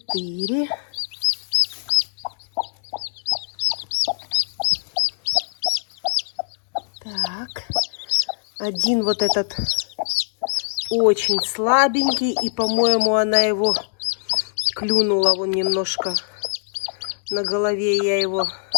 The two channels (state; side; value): silent; right; digital silence